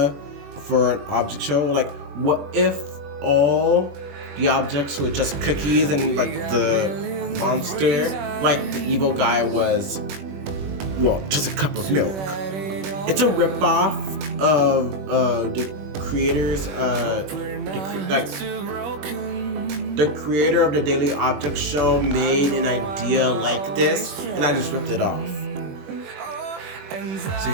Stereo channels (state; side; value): late; left; 21 ms